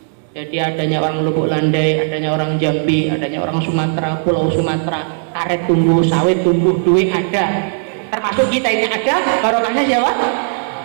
Jadi adanya orang Lubuk Landai, adanya orang Jambi, adanya orang Sumatera, Pulau Sumatera, karet tumbuh, sawit tumbuh, duit ada. Termasuk kita ini ada, barokahnya siapa?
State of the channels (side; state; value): left; silent; digital silence